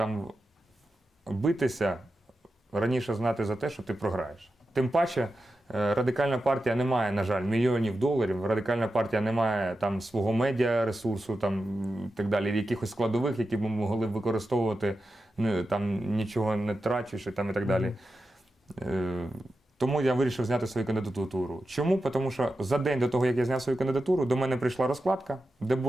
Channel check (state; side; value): normal; both; correlation 0.90